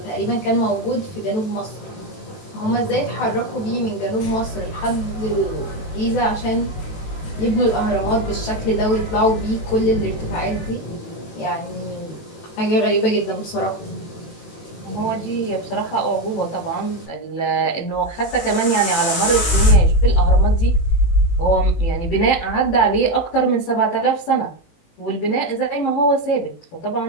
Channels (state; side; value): late; right; 18 ms